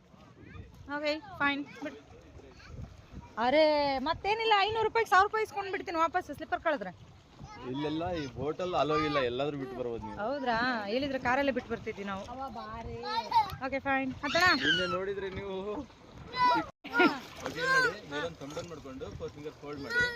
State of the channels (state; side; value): identical; both; correlation 1.00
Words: ಓಕೆ ಫೈನ್ ಬಿಟ್. ಅರೆ ಮತ್ತೇನಿಲ್ಲ, 500 ರೂಪಾಯಿಗೆ 1000 ರೂಪಾಯಿ ಇಸ್ಕೊಂಡು ಬಿಡ್ತೀನಿ ವಾಪಸ್ ಸ್ಲಿಪ್ಪರ್ ಕಳೆದ್ರೆ. ಇಲ್ಲೆಲ್ಲ ಈ ಹೋಟೆಲ್ ಅಲೋ ಇಲ್ಲ, ಎಲ್ಲಾದ್ರೂ ಬಿಟ್ಟು ಬರ್ಬೋದು ನೀವು. ಹೌದ್ರಾ? ಹೇಳಿದ್ರೆ ಕಾರಲ್ಲೇ ಬಿಟ್ಟು ಬರ್ತಿದ್ವಿ ನಾವು. Okay fine. ನಿನ್ನೆ ನೋಡಿದ್ರೆ ನೀವು ಮೇಲೊಂದು ಕಂಬನ್ ಮಾಡ್ಕೊಂಡು 4 ಫಿಂಗರ್ ಫೋಲ್ಡ್ ಮಾಡಿ